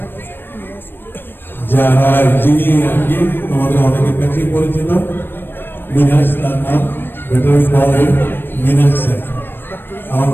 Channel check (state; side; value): late; right; 0.098 ms